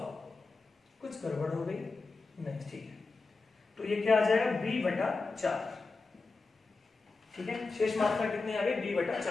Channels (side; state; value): right; quieter; 3.9 dB